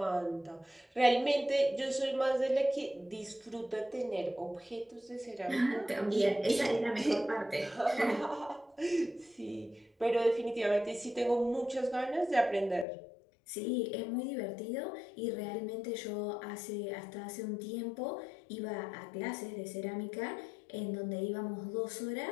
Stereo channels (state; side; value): drops out; right; at 12.9 s